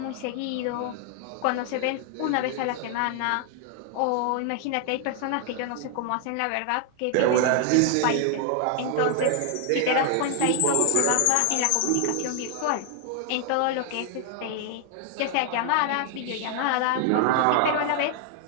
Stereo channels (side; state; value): both; different; correlation 0.00